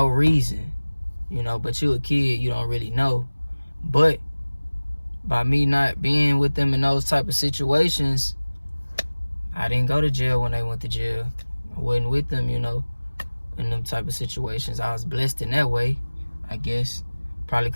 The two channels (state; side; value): inverted; both; correlation -1.00